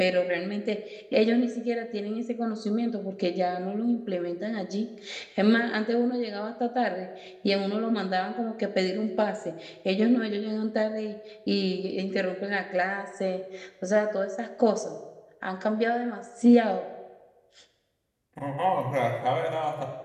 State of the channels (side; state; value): both; identical; correlation 1.00